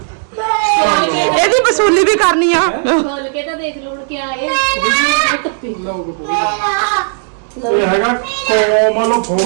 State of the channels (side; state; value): left; silent; digital silence